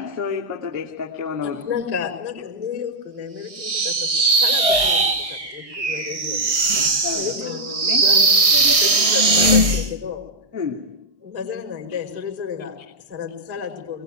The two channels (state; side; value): late; left; 1.6 ms